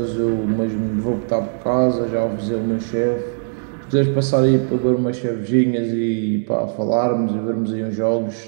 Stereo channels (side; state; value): left; silent; digital silence